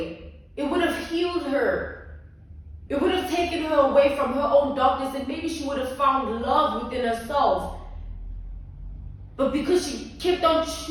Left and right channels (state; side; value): identical; both; correlation 1.00